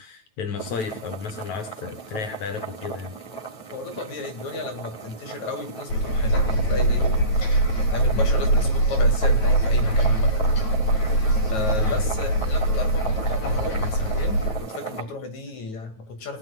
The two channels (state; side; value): late; right; 9.2 ms